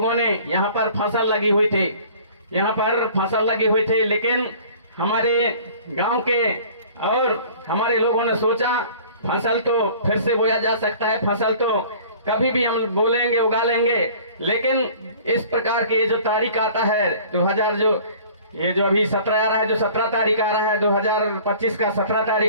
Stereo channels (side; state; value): both; inverted; correlation -0.48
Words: ने यहाँ पर फसल लगी हुई थी, लेकिन हमारे गांव के और हमारे लोगों ने सोचा फसल तो फिर से बोया जा सकता है, फसल तो कभी भी हम बोलेंगे उगा लेंगे, लेकिन इस प्रकार के जो तारीख आता है 2000 जो ये जो अभी 17 आ रहा है, जो 17 तारीख आ रहा है 2025 का, 17